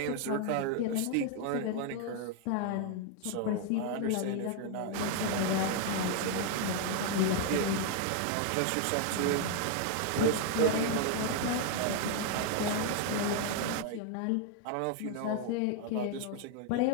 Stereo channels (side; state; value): both; different; correlation 0.00